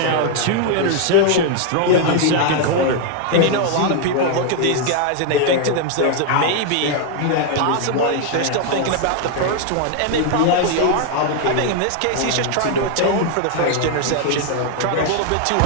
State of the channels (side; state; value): both; different; correlation 0.00